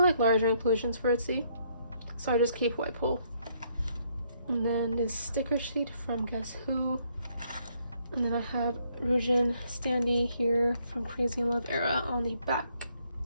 larger inclusions for itzy, so I just keep who I pull. And then this sticker sheet from Guess Who. And then I have Ryujin standee here from Crazy in Love era on the back.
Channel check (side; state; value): both; inverted; correlation -0.70